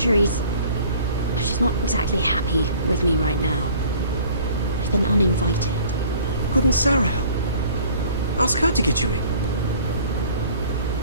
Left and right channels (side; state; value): both; inverted; correlation -0.51